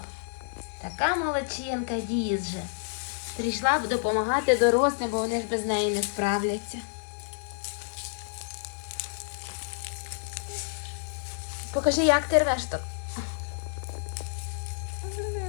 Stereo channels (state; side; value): silent; right; digital silence